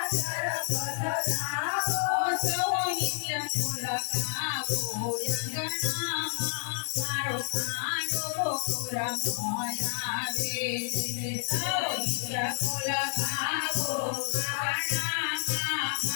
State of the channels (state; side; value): silent; right; digital silence